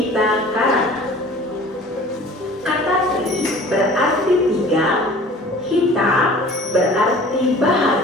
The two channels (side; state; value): both; normal; correlation 0.46